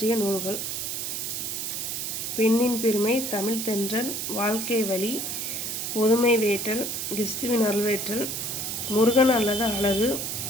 நூல்கள்: பெண்ணின் பெருமை, தமிழ் தென்றல், வாழ்க்கை வழி, பொதுமை வேட்டல், கிறிஸ்துவின் அருள்வேற்றல், முருகன் அல்லது அழகு,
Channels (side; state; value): right; noise; hiss, 3 dB below the sound